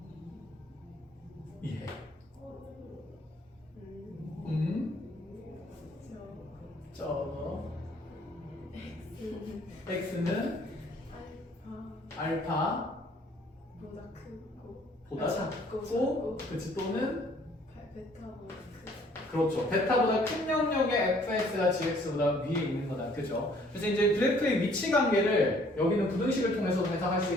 이해. 저 x는 알파 보다 크고 보다 작고 그치 또는 베타보다 크고 그렇죠. 베타보다 큰 영역의 fx가 gx보다 위에 있는 거다. 그죠? 그래서 이제 그래프의 위치 관계를 여기는 부등식을 통해서 해석할 수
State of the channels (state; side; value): normal; both; correlation 0.60